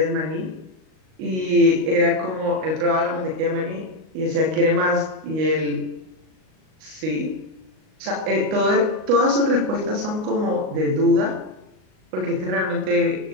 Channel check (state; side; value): late; left; 38 ms